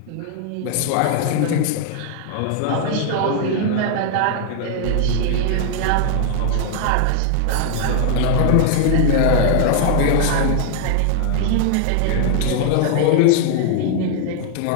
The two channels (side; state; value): both; different; correlation -0.01